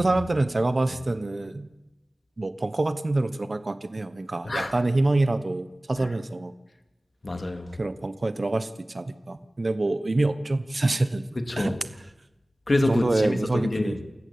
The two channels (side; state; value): both; normal; correlation 0.98